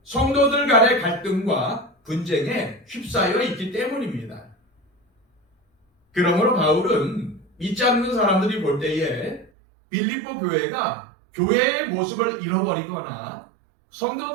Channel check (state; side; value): drops out; left; at 9.5 s